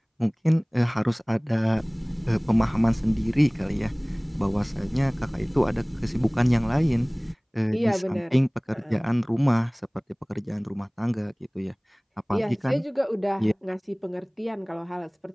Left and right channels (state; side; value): identical; both; correlation 1.00